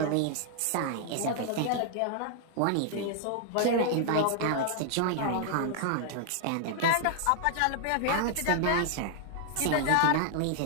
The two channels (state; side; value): different; both; correlation 0.00